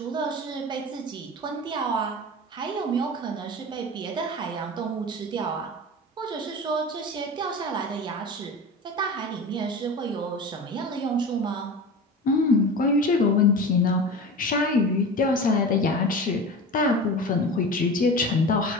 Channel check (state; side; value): normal; both; correlation 0.32